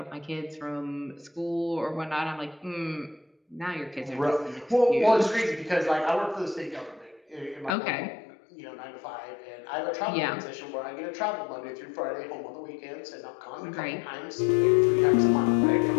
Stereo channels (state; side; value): drops out; right; at 7.7 s